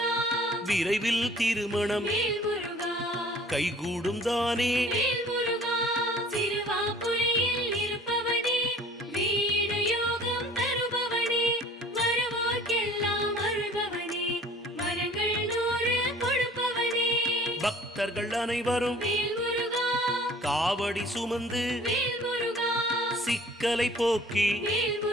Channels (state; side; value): normal; both; correlation 0.50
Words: விரைவில் திருமணம் கைகூடும் தானே. பக்தர்கள் அனைவரும் காவடி சுமந்து சிக்கலை போக்கி